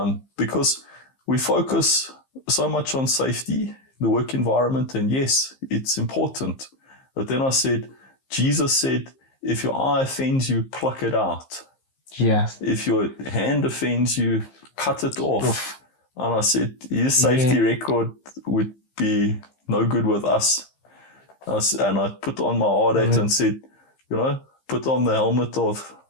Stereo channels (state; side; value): late; right; 15 ms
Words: because we focus so much on safety, the work environment, and yes, it's important. But then I said, Jesus said, if your eye offends you, pluck it out. Yes. If your hand offends you, cut it off. And I said, his safety record would be no good with us. And I put on my hard hat and said, put on the helmet of